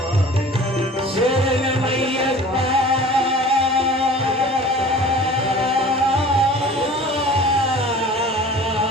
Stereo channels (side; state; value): both; normal; correlation 0.43